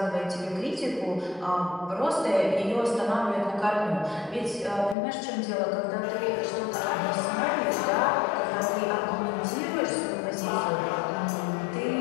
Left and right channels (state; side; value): drops out; right; at 5.0 s